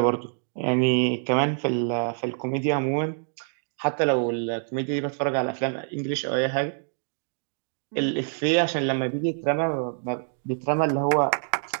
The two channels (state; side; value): silent; left; digital silence